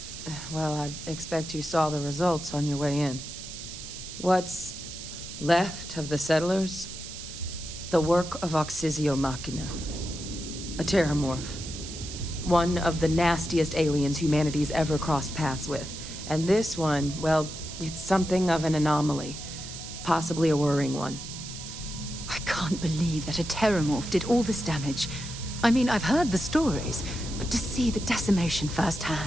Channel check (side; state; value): right; noise; hiss, 10 dB below the sound